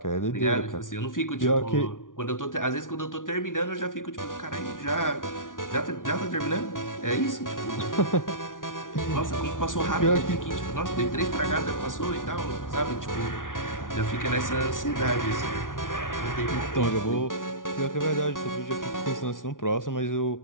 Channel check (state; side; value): late; right; 0.88 ms